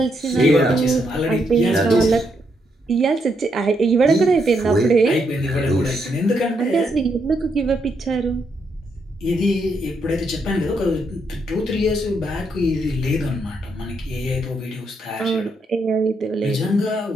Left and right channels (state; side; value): normal; both; correlation 0.78